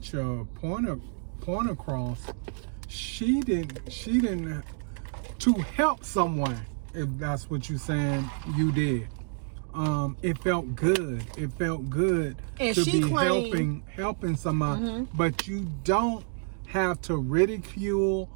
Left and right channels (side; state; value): left; silent; 57 dB below the other